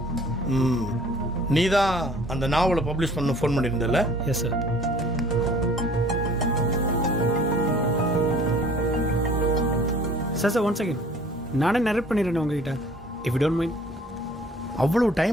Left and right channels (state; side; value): normal; both; correlation 0.52